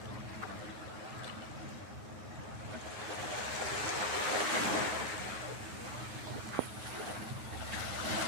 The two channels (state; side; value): late; left; 9.8 ms